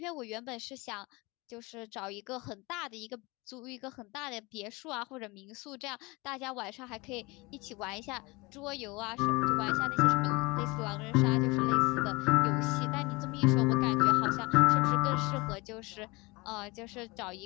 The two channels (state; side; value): quieter; right; 24.8 dB